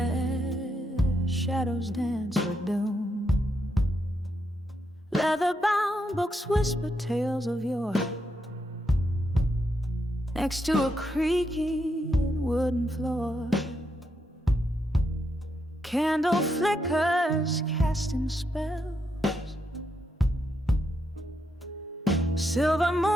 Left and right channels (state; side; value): normal; both; correlation 0.81